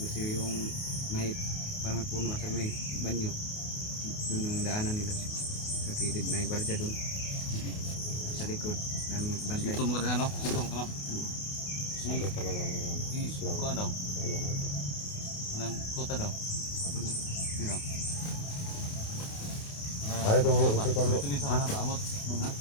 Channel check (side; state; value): right; late; 28 ms